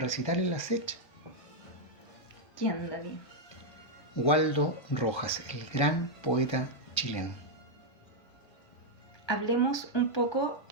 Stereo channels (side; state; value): right; late; 1.3 ms